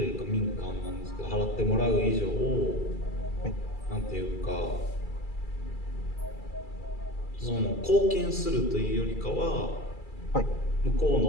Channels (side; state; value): right; late; 2.3 ms